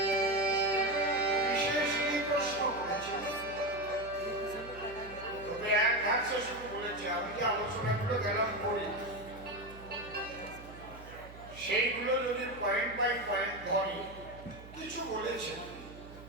সেইগুলো যদি পয়েন্ট বাই পয়েন্ট ধরি কিছু বলেছে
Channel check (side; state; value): right; noise; hum, 17 dB below the sound